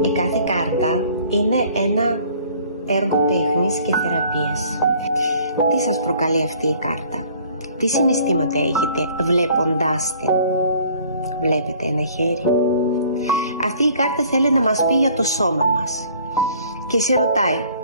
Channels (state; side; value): inverted; both; correlation -0.55